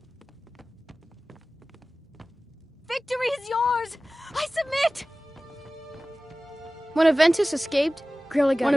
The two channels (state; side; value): normal; both; correlation 0.97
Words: Victory is yours! I submit! When Aventus escaped, Grelad got